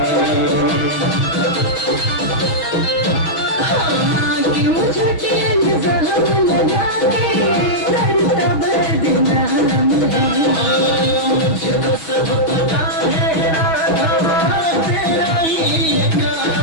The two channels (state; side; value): late; right; 6.2 ms